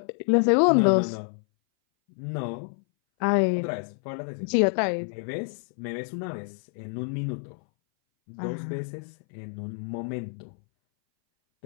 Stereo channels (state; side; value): silent; right; 59 dB below the other